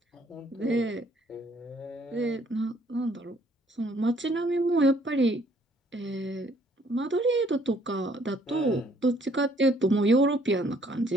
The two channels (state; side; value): normal; both; correlation 0.63